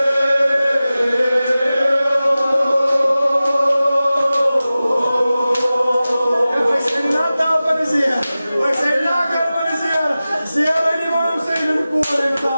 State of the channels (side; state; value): both; inverted; correlation -0.96